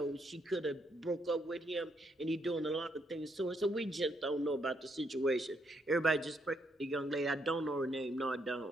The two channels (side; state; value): both; normal; correlation 0.75